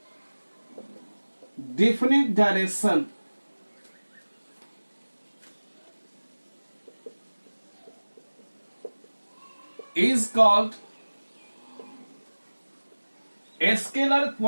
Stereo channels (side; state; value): both; inverted; correlation -1.00